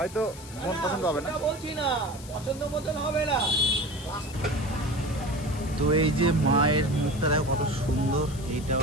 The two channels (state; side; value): noise; left; hiss, 17 dB below the sound